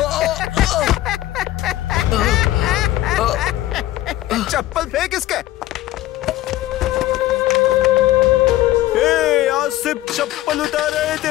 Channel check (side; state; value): right; quieter; 15.0 dB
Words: चप्पल फेंक इसके। आज सिर्फ चप्पल उतारा है